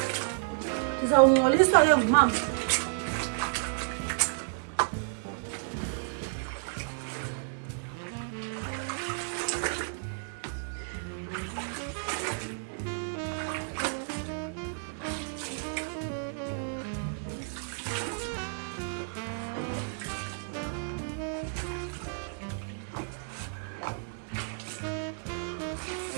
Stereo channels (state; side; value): silent; left; digital silence